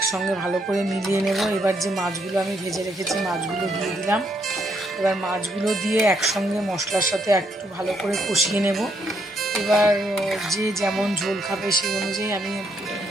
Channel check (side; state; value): both; normal; correlation 0.74